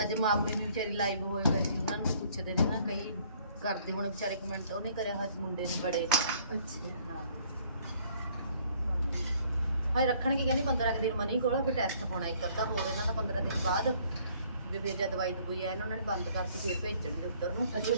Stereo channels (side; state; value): both; inverted; correlation -0.60